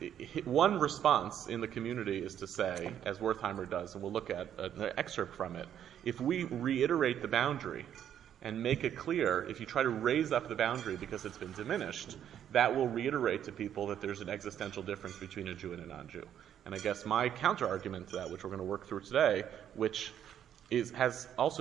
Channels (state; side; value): quieter; left; 9.9 dB